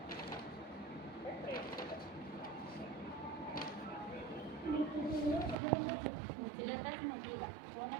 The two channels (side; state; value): left; drops out; at 5.6 s